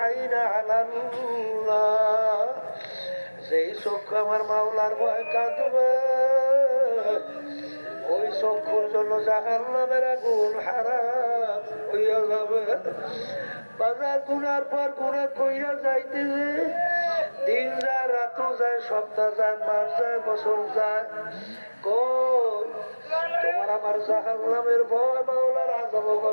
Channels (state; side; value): inverted; both; correlation -1.00